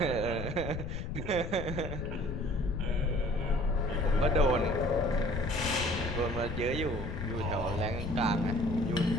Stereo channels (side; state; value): left; noise; rumble, 6 dB below the sound